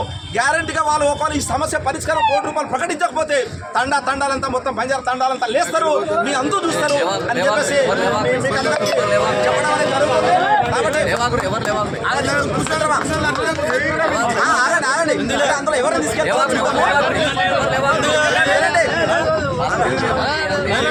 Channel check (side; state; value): both; identical; correlation 1.00